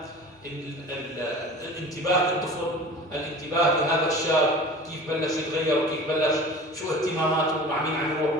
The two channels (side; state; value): both; normal; correlation 0.39